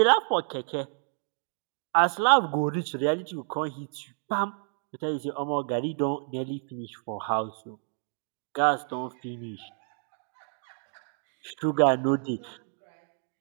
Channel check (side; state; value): left; silent; 58 dB below the other